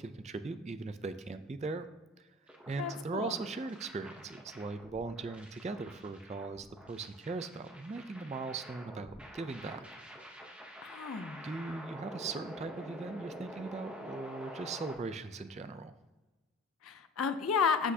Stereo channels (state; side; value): normal; both; correlation 0.46